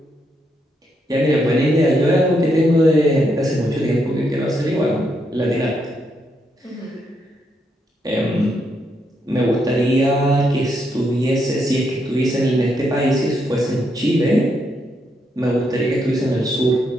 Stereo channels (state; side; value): normal; both; correlation 0.78